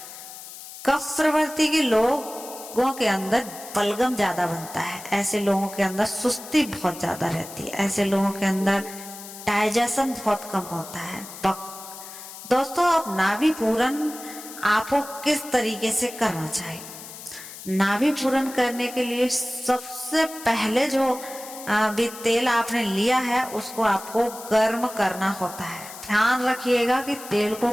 कफ प्रवृत्ति के लोगों के अंदर बलगम ज्यादा बनता है, ऐसे लोगों के अंदर सुस्ती बहुत ज्यादा रहती है, ऐसे लोगों के अंदर डाइजेशन बहुत कम होता है। दोस्तों अब नाभि पूरन आपको किस तरीके से करना चाहिए। नाभि पूरन करने के लिए सबसे पहले जो भी तेल आपने लिया है उसको आपको गर्म करना होता है। ध्यान रखिएगा कि तेल को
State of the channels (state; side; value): noise; left; hiss, 14 dB below the sound